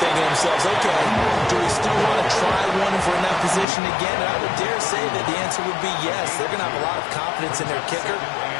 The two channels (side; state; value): right; drops out; at 3.7 s